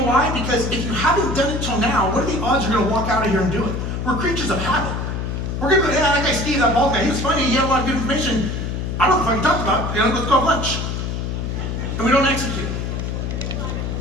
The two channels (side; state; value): left; noise; hum, 3 dB below the sound